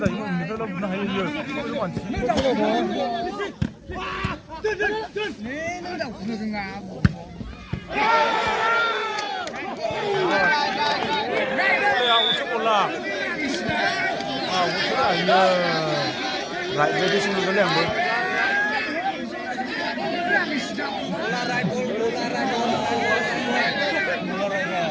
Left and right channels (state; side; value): identical; both; correlation 1.00